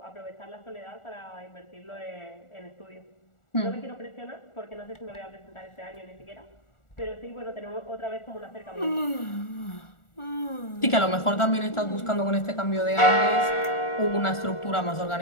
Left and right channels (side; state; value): right; late; 1.4 ms